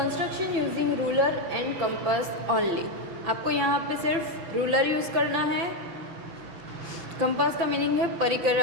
using ruler and compass only. आपको यहाँ पे सिर्फ रूलर यूज़ करना है. कंपास का मीनिंग है परिकर,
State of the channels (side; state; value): left; late; 5.9 ms